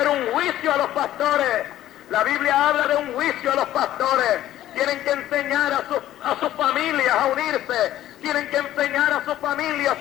un juicio a los pastores. La Biblia habla de un juicio a los pastores. Tienen que enseñar a sus familias a unirse. Tienen que enseñar a sus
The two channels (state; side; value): quieter; right; 13.4 dB